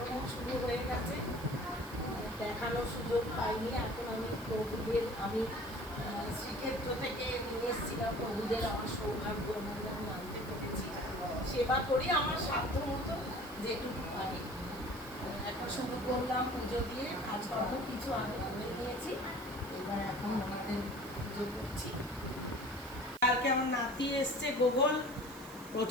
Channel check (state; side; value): noise; right; hiss, 18 dB below the sound